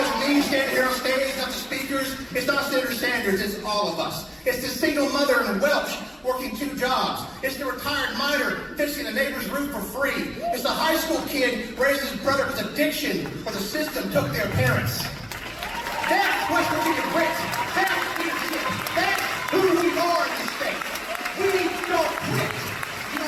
me standing here on stage, it's not the speakers, it's not Senator Sanders, it's all of us. It's the single mother in Welch working 2 jobs. It's the retired miner fixing the neighbor's roof for free. It's the high school kid raising his brother with addiction or the system took their parents. That's West Virginia grit. That's leadership. That's who we are in this state. We don't quit. You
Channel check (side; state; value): both; identical; correlation 1.00